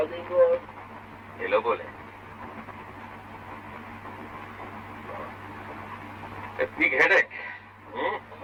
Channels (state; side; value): identical; both; correlation 1.00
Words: এলো বলে বিগ হেডেক।